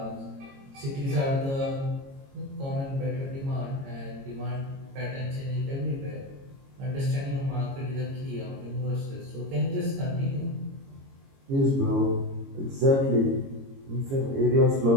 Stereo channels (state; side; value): late; left; 22 ms